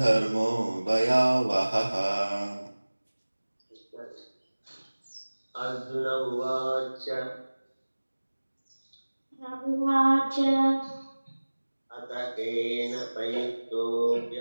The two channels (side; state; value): both; inverted; correlation -1.00